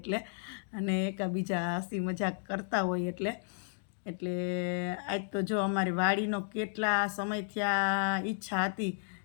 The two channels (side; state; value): right; silent; digital silence